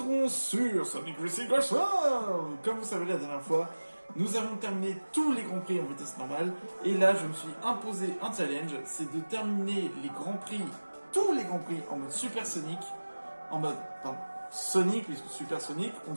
sur Sonic Racing Crash. Comme vous savez, la dernière fois, nous avons terminé tous les Grands Prix en vitesse normale. Et là, je me suis imposé un challenge, c'est de terminer les Grands Prix, tous les Grands Prix en mode Super Sonic, en mode, pardon, Sonic, puisque Super Sonic, on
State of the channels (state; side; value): inverted; both; correlation -1.00